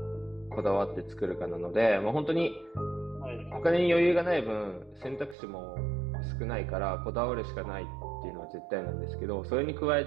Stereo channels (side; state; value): left; drops out; at 5.4 s